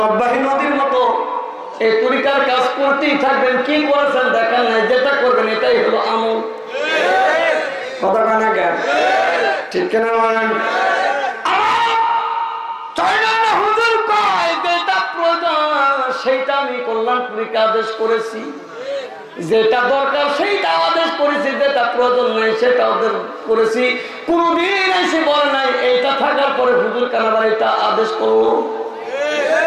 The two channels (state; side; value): identical; both; correlation 1.00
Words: নদীর মতো এই তরিকার কাজ করতেই থাকবেন। কি করেছেন দেখেন নাই, যেটা করবেন এটাই হলো আমল। কথা কানা জ্ঞান, ঠিক কিনা বলেন? সেইটা আমি কল্যাণপুরীকে আদেশ করেছি, যেটা দরকার সেইটা আদেশ করেছি, যেটা প্রয়োজন নাই সেটা আদেশ করেছি। কোনদিন এসে বলে নাই এইটা থাকার পরে হুজুর কানাবার এটা আদেশ করলো।